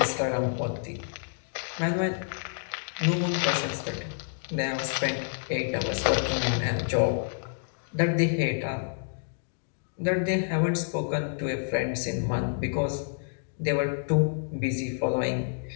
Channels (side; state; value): right; silent; digital silence